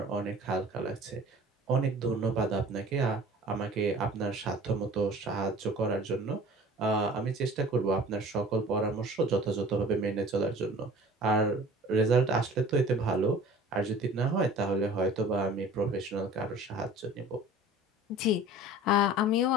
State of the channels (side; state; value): both; normal; correlation 0.45